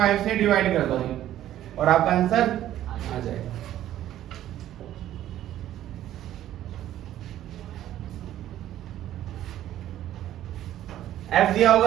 से डिवाइड कर दो और आपका आंसर आ जाएगा। f दिया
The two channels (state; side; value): quieter; left; 12.6 dB